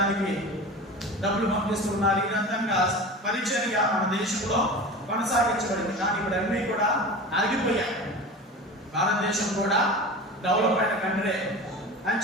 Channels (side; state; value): both; normal; correlation 0.33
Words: డబ్బులు పంపిస్తున్నారు. ఈ విధంగా పరిచర్య మన దేశంలో కొనసాగించబడింది. కానీ ఇప్పుడు అన్నీ కూడా ఆగిపోయాయి. భారతదేశం కూడా డెవలప్ అయిన కంట్రీ అని